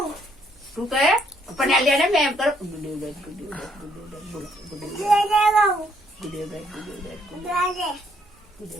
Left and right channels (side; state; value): both; normal; correlation 0.68